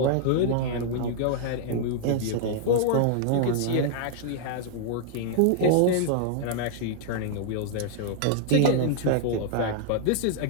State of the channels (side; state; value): both; different; correlation -0.01